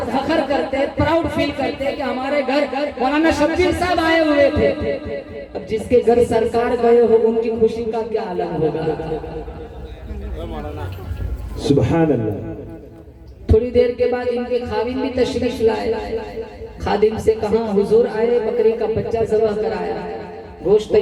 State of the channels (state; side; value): identical; both; correlation 1.00